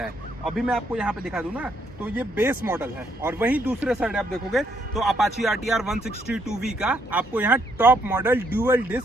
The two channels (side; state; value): both; normal; correlation 0.72